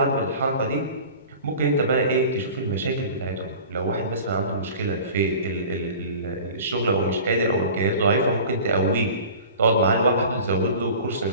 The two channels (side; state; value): both; inverted; correlation -0.40